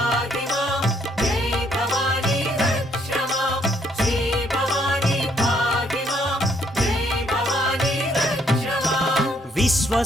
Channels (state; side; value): normal; both; correlation 0.69